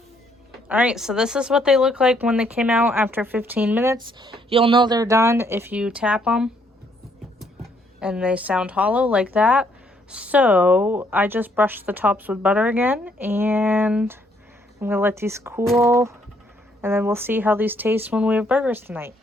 Alright, so this is what they look like when they came out after 15 minutes. You'll know they're done if you tap them and they sound hollow like that. So I just brushed the tops with butter again, and I'm going to let these cool, and then we'll see how these taste when we have burgers tonight.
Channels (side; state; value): both; normal; correlation 0.69